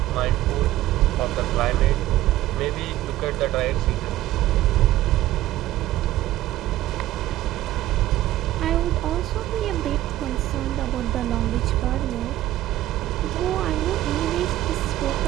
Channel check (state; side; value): quieter; left; 14.9 dB